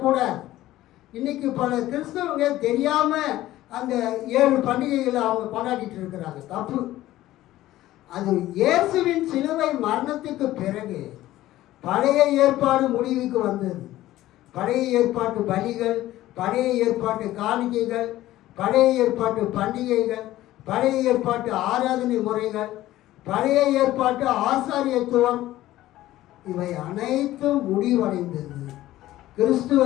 இன்னைக்கு பல கிறிஸ்தவங்க தெரியாமல் அந்த 7 பண்டிகைகளை அவங்க கொண்டாடிட்டு இருக்கிறாங்க. தப்பு. அது இயேசுவின் சிலுவை மரணத்துக்கு பிறகு பழைய ஏற்பாடு முடிவுக்கு வந்தது. பழைய ஏற்பாட்டு பலிகள், பழைய ஏற்பாட்டு காணிக்கைகள், பழைய ஏற்பாட்டு பண்டிகைகள், பழைய ஏற்பாட்டு ஆராதனை முறைகள், பழைய ஏற்பாட்டு ஆசாரியத்துவம் இவை அனைத்தும் முடிவடைந்தது.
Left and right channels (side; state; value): right; quieter; 15.2 dB